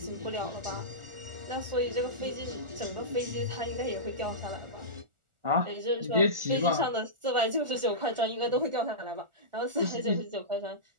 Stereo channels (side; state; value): left; late; 1.4 ms